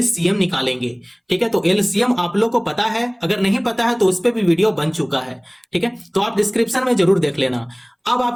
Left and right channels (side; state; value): both; identical; correlation 1.00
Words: निकालेंगे। ठीक है, तो एलसीएम आप लोग को पता है, अगर नहीं पता है तो उस पर भी वीडियो बन चुका है। ठीक है, तो आप डिस्क्रिप्शन में जरूर देख लेना। अब